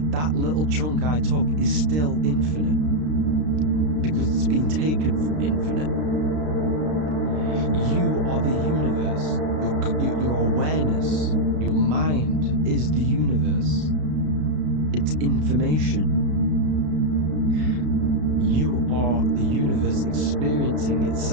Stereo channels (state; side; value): late; left; 33 ms